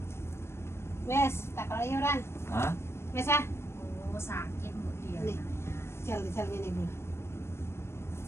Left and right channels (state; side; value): late; right; 0.12 ms